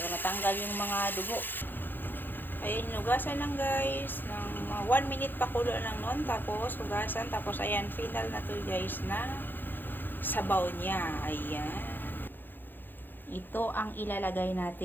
matanggal yung mga dugo. Ayan, hugasan lang guys. Ng 1 minute pakulo lang nun. Tapos, hugasan. Tapos, ayan, final na to guys na sabaw niya. Ayan. Ito ang ilalagay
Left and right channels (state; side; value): late; right; 0.094 ms